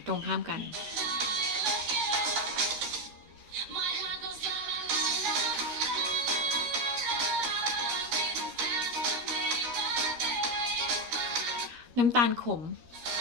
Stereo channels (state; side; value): late; left; 13 ms